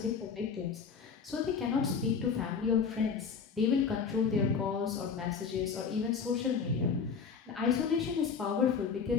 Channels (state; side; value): quieter; right; 6.0 dB